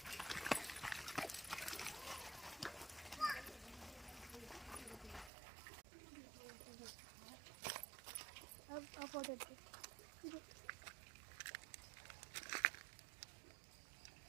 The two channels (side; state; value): left; drops out; at 5.3 s